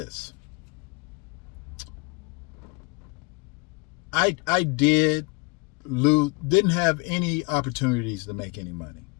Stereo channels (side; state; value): right; quieter; 28.7 dB